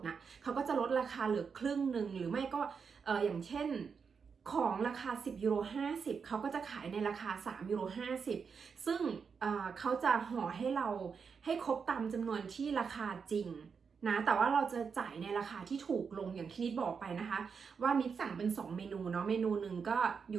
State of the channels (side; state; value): left; quieter; 5.9 dB